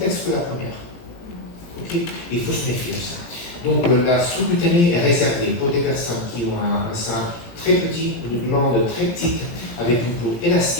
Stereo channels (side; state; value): right; late; 17 ms